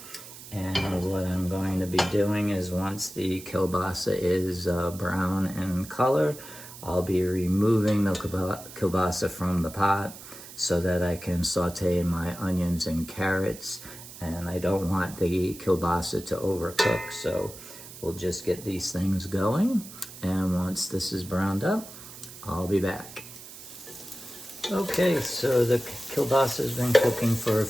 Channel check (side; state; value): right; noise; hiss, 15 dB below the sound